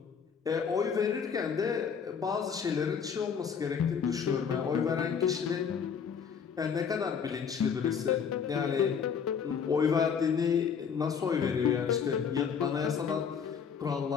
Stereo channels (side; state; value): right; quieter; 6.8 dB